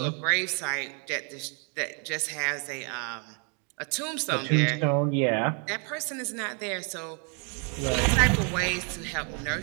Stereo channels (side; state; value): left; quieter; 37.9 dB